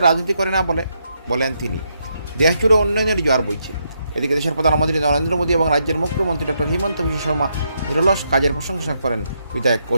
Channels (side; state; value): both; inverted; correlation -0.79